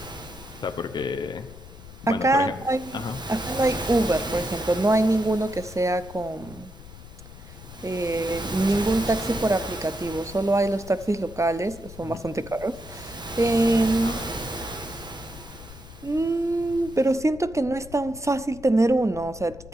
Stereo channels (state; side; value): noise; left; rumble, 17 dB below the sound